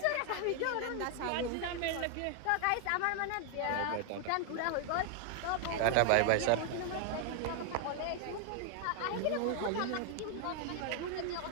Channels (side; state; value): both; different; correlation 0.00